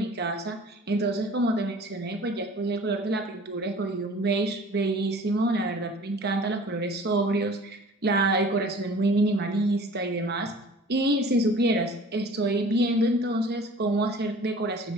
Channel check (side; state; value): both; normal; correlation 0.46